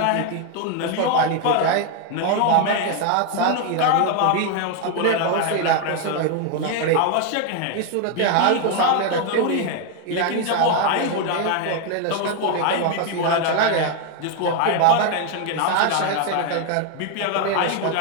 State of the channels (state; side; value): different; both; correlation 0.01